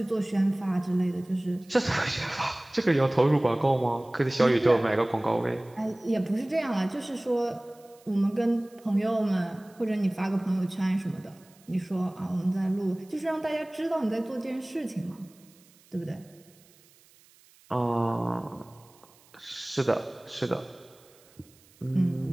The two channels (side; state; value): right; noise; hiss, 28 dB below the sound